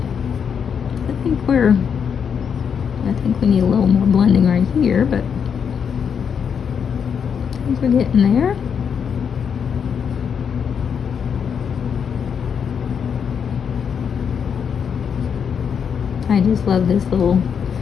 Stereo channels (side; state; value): right; quieter; 7.1 dB